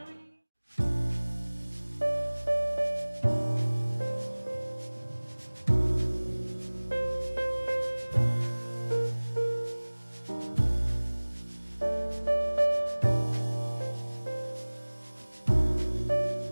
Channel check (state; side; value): inverted; both; correlation -1.00